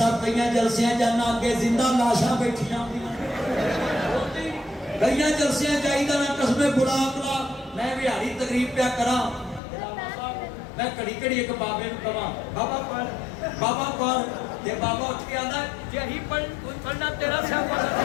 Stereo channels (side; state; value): right; drops out; at 9.6 s